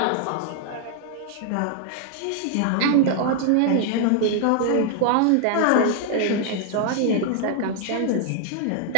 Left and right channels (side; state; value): both; different; correlation 0.00